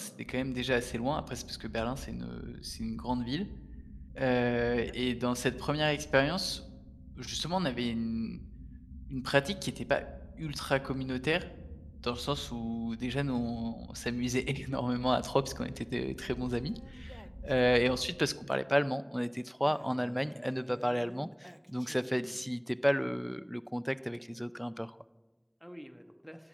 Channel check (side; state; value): both; identical; correlation 1.00